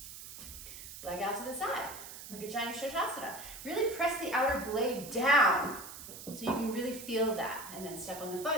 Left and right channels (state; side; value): noise; right; hiss, 12 dB below the sound